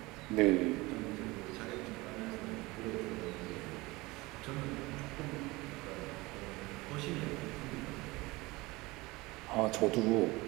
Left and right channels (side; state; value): left; quieter; 22.2 dB